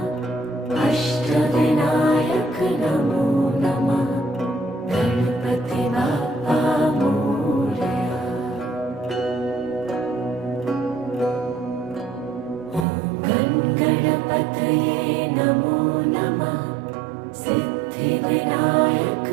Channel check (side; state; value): left; drops out; at 12.9 s